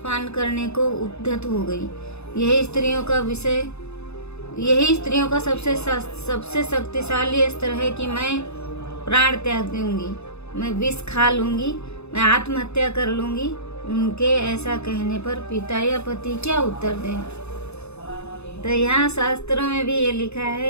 करने को उद्यत हो गई। यही स्त्रियों का सबसे शक्तिशाली अस्त्र है कि मैं प्राण त्याग दूंगी, मैं विष खा लूंगी, मैं आत्महत्या कर लूंगी। उनके ऐसा कहने पर पिता या पति क्या उत्तर दें? तो यहाँ शास्त्रों में भी ये लिखा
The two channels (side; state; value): right; late; 0.80 ms